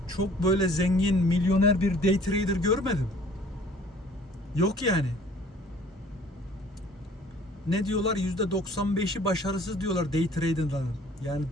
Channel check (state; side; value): normal; both; correlation 0.53